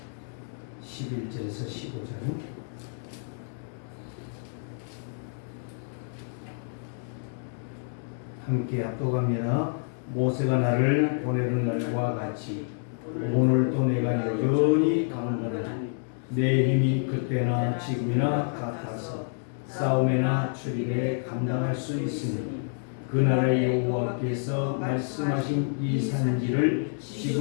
11절에서 15절 함께 합독합니다. 모세가 나를 보내는 날과 같이 오늘도 내가 여전히 강건하니 내 힘이 그때나 지금이나 같아서 싸움에나 출입에 감당할 수 있으니 그날의 여호와께서 말씀하신 이 산지를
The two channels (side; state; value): right; silent; 59 dB below the other